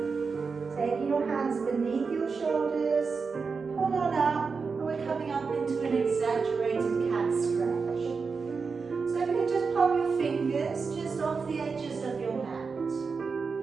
Taking your hands beneath your shoulders, pull on up, and we're coming up into an exaggerated cat stretch. So if you can just pop your fingers just off the edges of your mat.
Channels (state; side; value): quieter; left; 5.0 dB